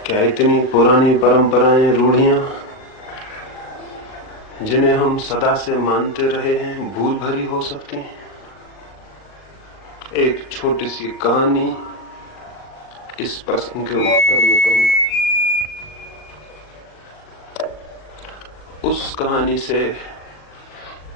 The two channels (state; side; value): late; right; 39 ms